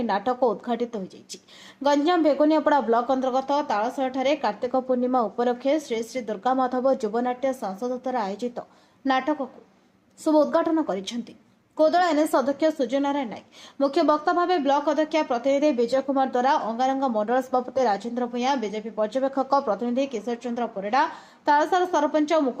ନାଟକ ଉଦ୍ଘାଟିତ ହୋଇଯାଇଛି। ଗଞ୍ଜାମ ବେଗୁନିଆପଡ଼ା ବ୍ଲକ ଅନ୍ତର୍ଗତ ତାଳସରାଠାରେ କାର୍ତ୍ତିକ ପୂର୍ଣ୍ଣିମା ଉପଲକ୍ଷେ ଶ୍ରୀ ଶ୍ରୀ ଦୁର୍ଗାମାଧବ ଯୁବନାଟ୍ୟ ସଂସଦ ଦ୍ୱାରା ଆୟୋଜିତ ନାଟକକୁ ଶୁଭ ଉଦ୍ଘାଟନ କରିଛନ୍ତି କୋଦଳ ଏନ୍ଏସ୍ ଅଧ୍ୟକ୍ଷ ସୂର୍ଯ୍ୟନାରାୟଣ ନାୟକ। ମୁଖ୍ୟ ବକ୍ତା ଭାବେ ବ୍ଲକ ଅଧ୍ୟକ୍ଷ ପ୍ରତିନିଧି ବିଜୟ କୁମାର ଦ୍ୱାରା, ଅଙ୍ଗାରଙ୍ଗ ମଣ୍ଡଳ ସଭାପତି ରାଜେନ୍ଦ୍ର ଭୂୟାଁ, ବିଜେପି ପର୍ଯ୍ୟବେକ୍ଷକ ପ୍ରତିନିଧି କିଶୋର ଚନ୍ଦ୍ର ପରିଡ଼ା, ତାଳସାର ସରପଞ୍ଚ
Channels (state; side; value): identical; both; correlation 1.00